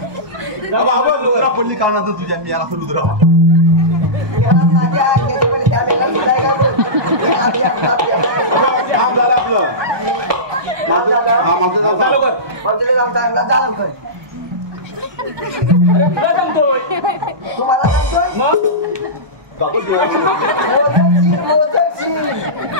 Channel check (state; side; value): late; left; 1.2 ms